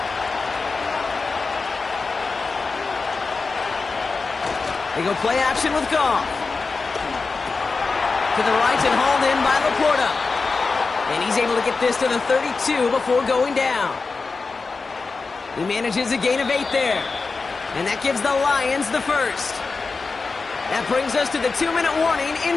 They go play action with Goff. To the right and hauled in by Laporta. And he's able to get this to the 32 before going down. He manages a gain of 8 there. And that gives the Lions the 1st. That brings us to the 2-minute warning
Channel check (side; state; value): right; quieter; 4.3 dB